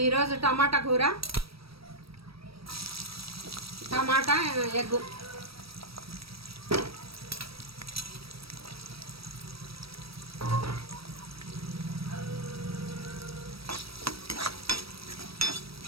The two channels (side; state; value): left; late; 0.76 ms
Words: ఈరోజు టమాటా కూర, టమాటా ఎగ్గు.